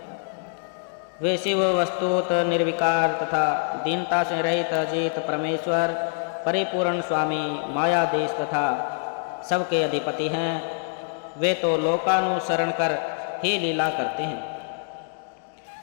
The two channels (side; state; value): right; silent; 62 dB below the other